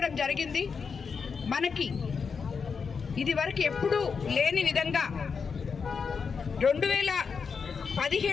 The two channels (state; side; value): quieter; right; 5.7 dB